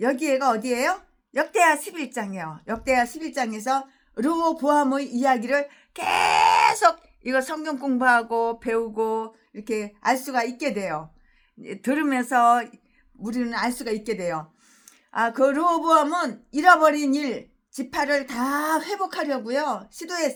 어디예요? 역대하 11장이에요. 역대하 11장에서 르호보암의 이야기를 계속 이거 성경 공부하고 배우고 이렇게 알 수가 있게 돼요. 들으면서 우리는 알 수가 있게 돼요. 그 르호보암은 잃어버린 지파를 다 회복하려고요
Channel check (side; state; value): both; identical; correlation 1.00